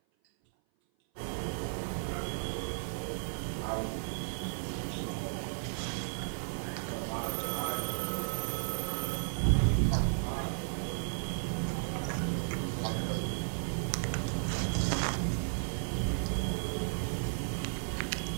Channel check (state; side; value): silent; left; 55 dB below the other